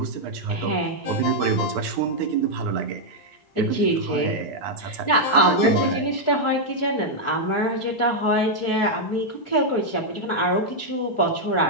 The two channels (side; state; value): both; normal; correlation -0.03